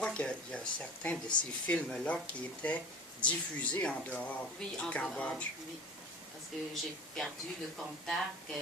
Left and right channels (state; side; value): normal; both; correlation 0.38